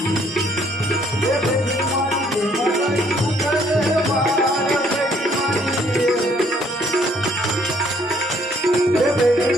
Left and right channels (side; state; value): both; normal; correlation 0.64